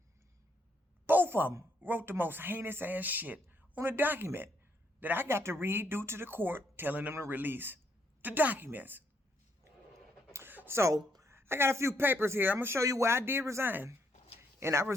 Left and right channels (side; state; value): both; normal; correlation 0.74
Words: Both of them wrote the most heinous ass shit on a document that I got to read due to the court telling them to release the documents. So, I got a few papers here. I'm going to show you where I did resign. And I